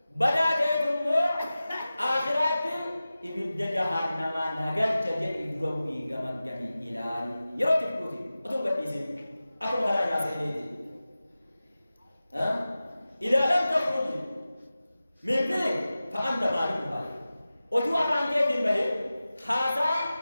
بدا تأتمو آخرات إبدا جهنم نغل جديد إدروبي غمان جميع إلاني يرو تفلوتي أتوم قد إسين أتوم هلا ناسي إليدي إذا لم تخرج من فيك فأنت مالك مالك أتو أفان كيتين بهي هذا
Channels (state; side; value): inverted; both; correlation -0.96